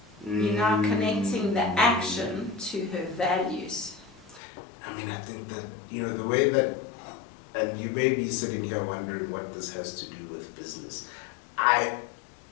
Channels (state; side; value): drops out; right; at 4.4 s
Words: You're now connecting the action to her values. I mean, I think that, the way that, and you may be sitting here wondering what this has to do with business.